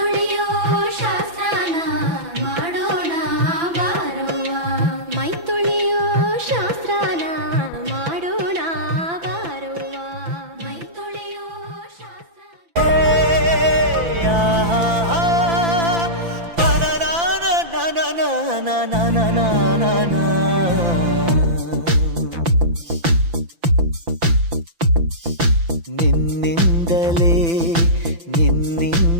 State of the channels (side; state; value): left; late; 5.9 ms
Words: ಶಾಸ್ತ್ರನ ಮಾಡೋಣ ಬಾರವ್ವ ಮೈ ತೊಳೆಯೋ ಶಾಸ್ತ್ರನ ಮಾಡೋಣ ಬಾರವ್ವ ಮೈ ತೊಳೆಯೋ ಶಾಸ್ತ್ರ ನಿನ್ನಿಂದಲೇ